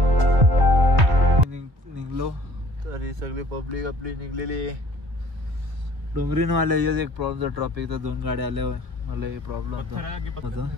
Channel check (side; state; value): left; late; 1.9 ms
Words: सगळी पब्लिक आपली निघलेली. डोंगरीन वाले एक प्रॉब्लेम ट्रॉफिकचा 2 गाड्या आल्यावर मला हे प्रॉब्लेम होता.